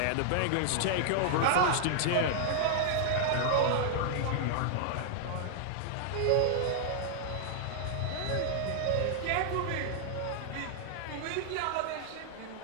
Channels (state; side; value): different; both; correlation -0.01